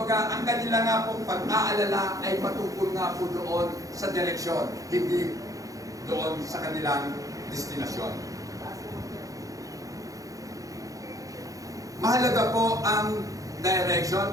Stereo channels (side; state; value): left; late; 0.17 ms